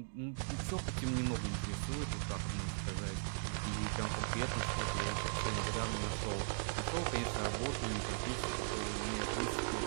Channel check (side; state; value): left; silent; digital silence